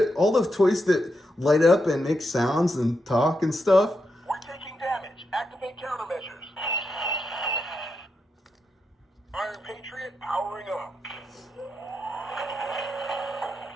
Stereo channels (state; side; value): normal; both; correlation 0.85